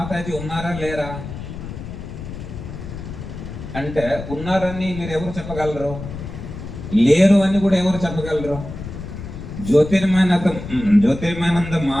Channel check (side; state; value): left; noise; rumble, 10 dB below the sound